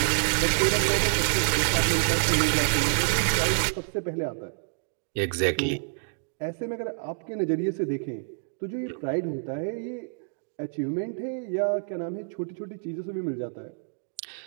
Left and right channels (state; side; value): silent; left; digital silence